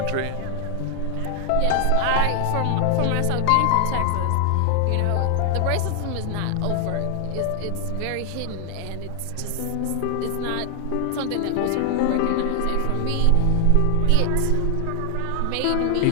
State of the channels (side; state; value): both; different; correlation 0.00